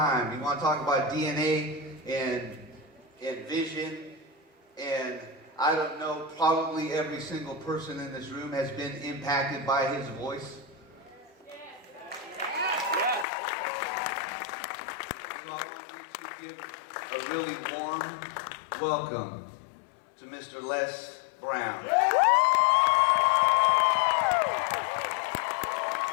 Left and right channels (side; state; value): right; drops out; at 13.2 s